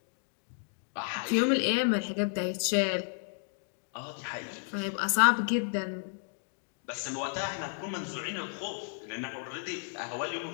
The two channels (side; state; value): right; silent; 56 dB below the other